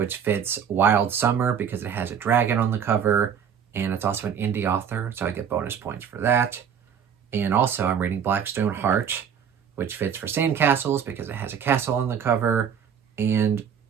fits Wild Summer because it has a dragon on the cover. And it's also an indie author, so I get bonus points for that. And also I'm reading Blackstone Heart, which fits for Sandcastles because it has a castle on the cover. And,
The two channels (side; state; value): left; quieter; 7.9 dB